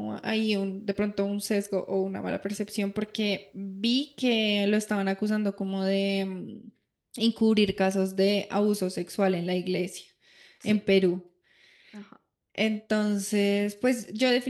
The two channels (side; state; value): both; identical; correlation 1.00